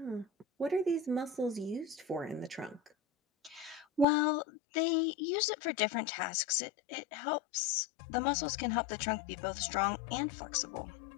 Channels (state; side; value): drops out; right; at 4.0 s